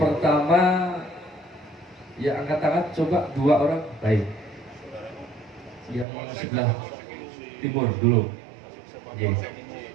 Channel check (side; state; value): left; drops out; at 6.1 s